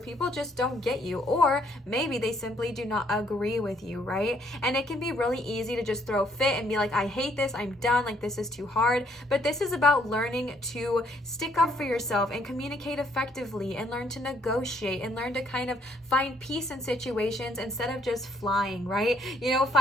people just don't get you, or maybe they simply do not agree with you, right? And it can be really easy to just throw a fit and be like, I hate this, I'm done, like this is too hard. But this is about learning to stick up for yourself and communicate effectively and learn to negotiate and learn to kind of find peace in situations instead of just flying, right? You know,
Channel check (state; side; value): normal; both; correlation 0.68